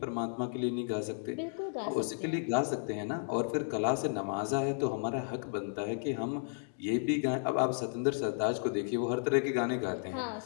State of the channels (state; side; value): silent; right; digital silence